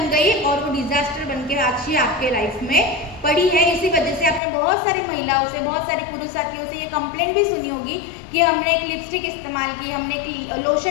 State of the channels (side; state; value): right; drops out; at 4.4 s